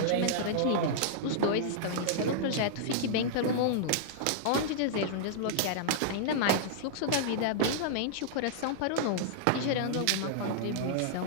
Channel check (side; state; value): both; different; correlation -0.01